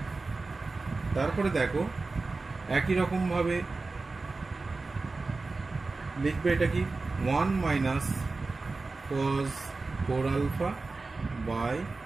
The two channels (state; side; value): quieter; left; 3.7 dB